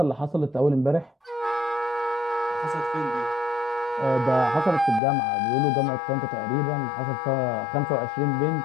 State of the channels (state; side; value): drops out; right; at 5.0 s